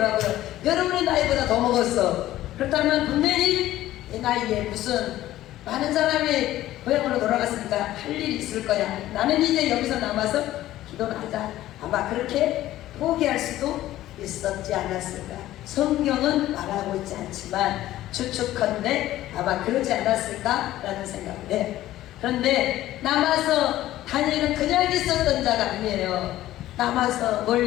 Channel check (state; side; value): quieter; right; 14.5 dB